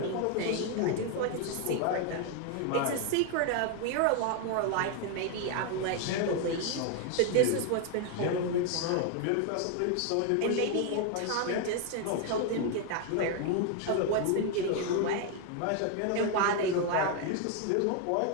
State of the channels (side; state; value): both; different; correlation 0.01